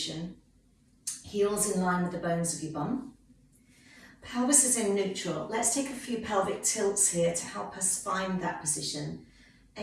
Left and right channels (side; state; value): both; identical; correlation 1.00